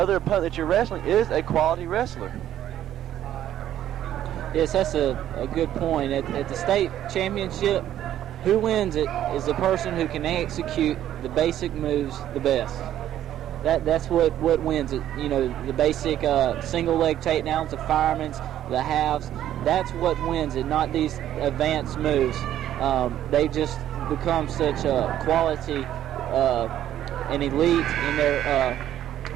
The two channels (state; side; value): quieter; left; 11.8 dB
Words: opponent that you're wrestling is a quality wrestler. Yes, that's a good point. At the state championship, who wins it is the person who can execute the basic moves the best. That's what wins it. The basic single leg takedowns, the firemen's, the halves. That's what wins it, not these advanced moves. They just become such a quality and elite in their